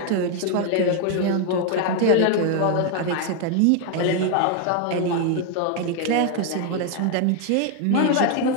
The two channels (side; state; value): both; different; correlation 0.01